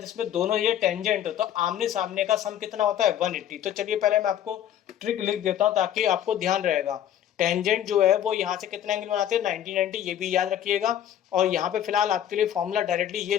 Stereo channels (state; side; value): quieter; right; 10.7 dB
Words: दोनों ये टेंजेंट हो तो आमने सामने का सम कितना होता है 180। तो चलिए पहले मैं आपको ट्रिक लिख देता हूं ताकि आपको ध्यान रहेगा। टेंजेंट जो है वो यहाँ से कितना एंगल बनाते हैं 90 90, ये भी याद रखिएगा। और यहाँ पे फिलहाल आपके लिए फॉर्मूला डायरेक्टली ये